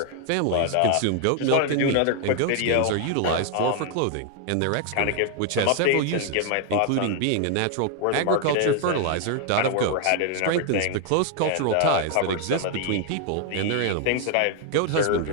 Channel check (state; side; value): different; both; correlation 0.00